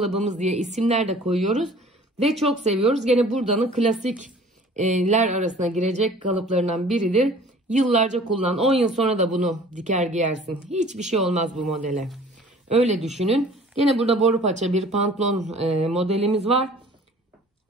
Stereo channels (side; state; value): both; normal; correlation 0.49